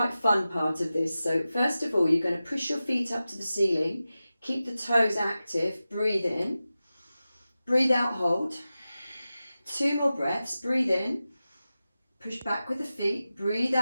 fun part of this. So first of all, you're going to push your feet up to the ceiling, keep the toes active, breathe in, breathe out, hold. 2 more breaths, breathe in, push back with the feet, breathe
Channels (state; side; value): inverted; both; correlation -0.94